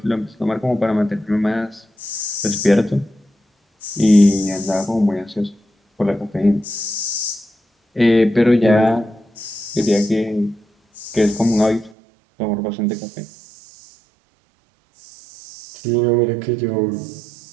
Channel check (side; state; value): left; drops out; at 12.0 s